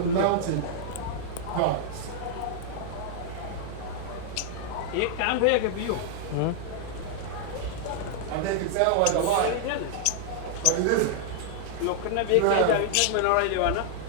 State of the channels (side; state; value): both; different; correlation -0.01